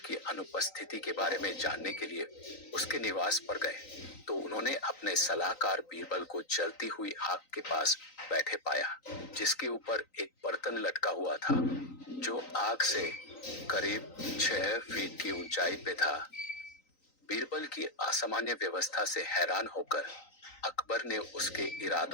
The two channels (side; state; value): right; late; 3.9 ms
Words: अनुपस्थिति के बारे में जानने के लिए उसके निवास पर गए, तो उन्होंने अपने सलाहकार बीरबल को जलती हुई आग के पास बैठे पाया, जिसके ऊपर एक बर्तन लटका हुआ था, जो आग से करीब 6 फीट की ऊंचाई पे था। बीरबल की असामान्य व्यवस्था से हैरान होकर अकबर ने उसके